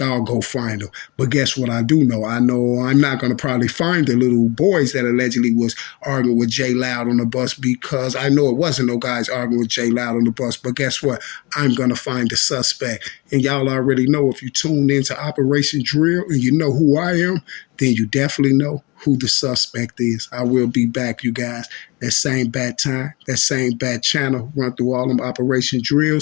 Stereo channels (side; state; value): right; quieter; 25.8 dB